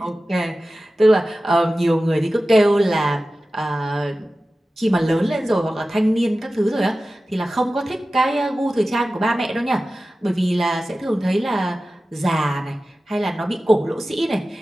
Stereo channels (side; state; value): both; normal; correlation 0.95